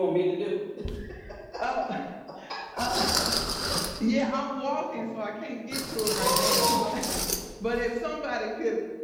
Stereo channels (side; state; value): both; identical; correlation 1.00